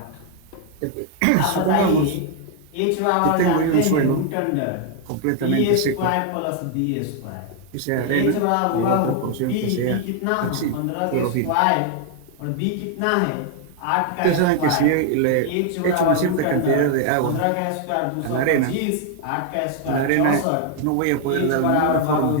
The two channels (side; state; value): both; different; correlation 0.00